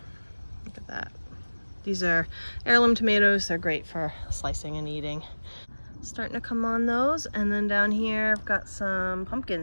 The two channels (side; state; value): both; inverted; correlation -1.00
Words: Look at that. These are heirloom tomatoes. They're great for slicing and eating. Starting to come on those. And then down here I've got some